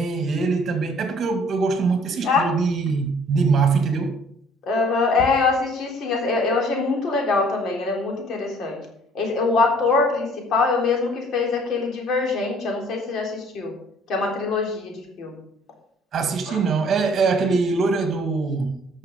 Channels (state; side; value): normal; both; correlation 0.56